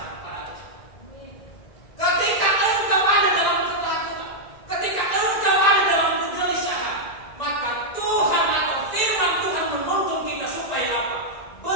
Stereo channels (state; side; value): late; right; 2.0 ms